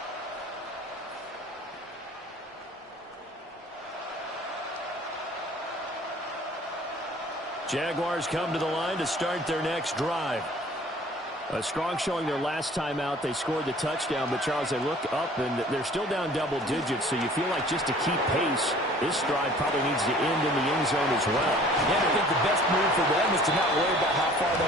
Jaguars come to the line to start their next drive. A strong showing their last time out. They scored the touchdown, but, Charles, they look up, and they're still down double digits, so you feel like just to keep pace, this drive probably needs to end in the end zone as well. Yeah, I think the best move for them is to not worry about how far they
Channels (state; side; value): normal; both; correlation 0.50